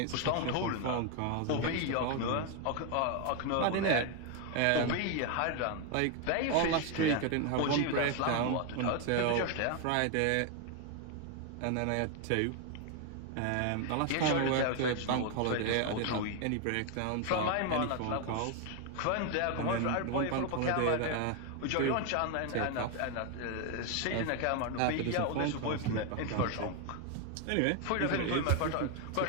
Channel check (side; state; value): both; different; correlation 0.01